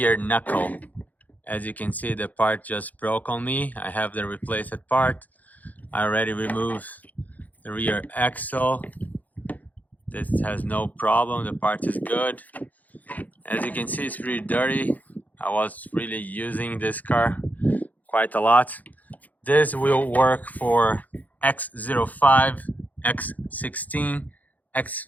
knuckle. As you can see, the part just broke on me. I have the replaced part. I already removed the rear axle. This has no problem, the part is good. As you can see, it's pretty dirty. I was really using this car quite a lot. This will work for X05, X16,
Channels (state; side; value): late; right; 0.080 ms